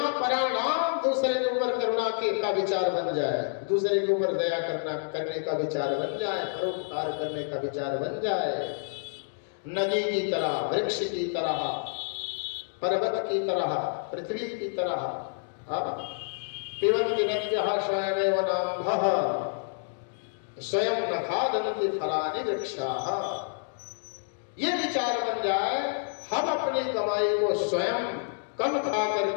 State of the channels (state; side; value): silent; right; digital silence